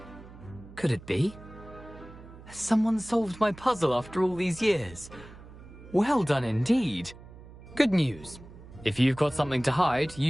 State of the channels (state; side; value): noise; right; hum, 18 dB below the sound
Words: Could it be? Has someone solved my puzzle after all these years? Well done indeed. Good news. If you've got something to hide,